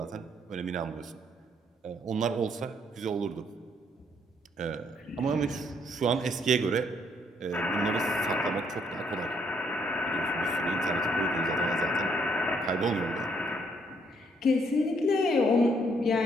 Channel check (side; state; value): both; normal; correlation 0.69